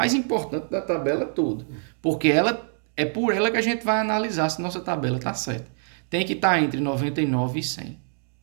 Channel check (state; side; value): silent; left; 59 dB below the other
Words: importante da tabela toda, porque é por ela que a gente vai analisar se nossa tabela está certa. Tem que estar entre 99 e 100.